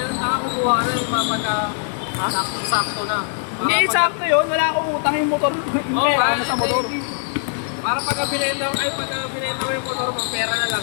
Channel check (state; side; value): silent; right; 65 dB below the other